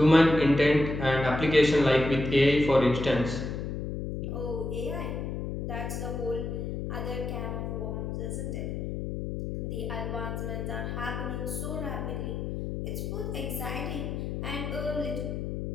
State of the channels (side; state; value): left; noise; hum, 4 dB below the sound